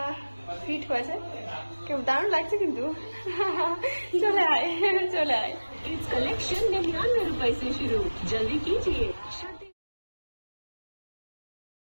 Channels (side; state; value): both; inverted; correlation -1.00